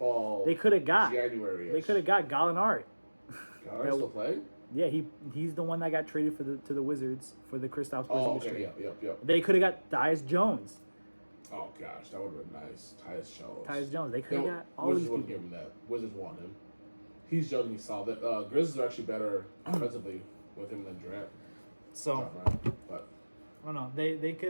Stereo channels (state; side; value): inverted; both; correlation -1.00